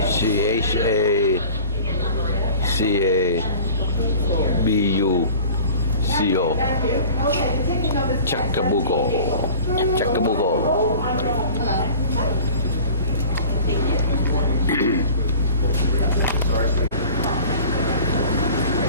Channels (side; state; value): both; inverted; correlation -0.42